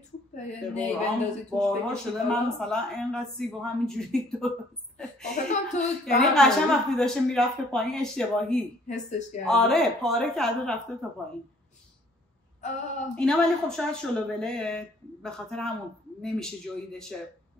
توپه یه نی بندازی توش بارها شده من مثلا اینقدر سیب و همینجوری درست تو یعنی قشنگ وقتی داشته میرفته پایین اشتباهی حسش کردی. آره پاره کرده رفته تا پایین. اینا ولی خب شاید شلوبله به خاطر همون نمیشه جویدشه،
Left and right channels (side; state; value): both; normal; correlation 0.59